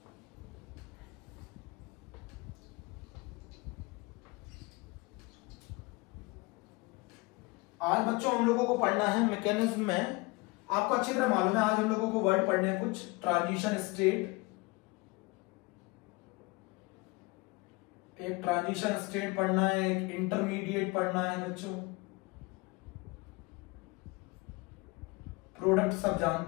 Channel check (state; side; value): quieter; right; 25.0 dB